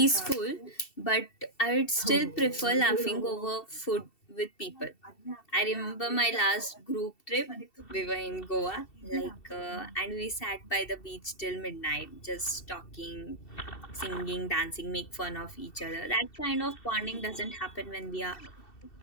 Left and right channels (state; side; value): late; right; 2.7 ms